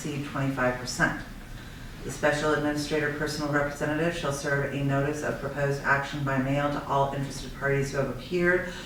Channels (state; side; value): identical; both; correlation 1.00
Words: 25%. The special administrator personal representative shall serve a notice of proposed action by mail to all interested parties who have appeared